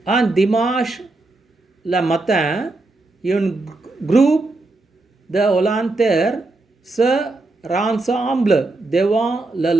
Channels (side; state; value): left; quieter; 3.1 dB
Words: Un dimanche le matin, un groupe de volontaires se rassemble devant